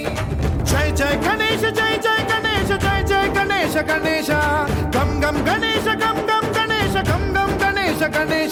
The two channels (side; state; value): both; identical; correlation 1.00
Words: जय जय गणेश जय जय गणेश जय जय गणेश गणेश गम गम गणेश गम गम गणेश गम गम गणेश